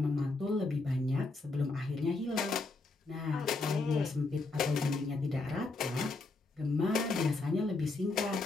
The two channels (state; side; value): quieter; right; 3.4 dB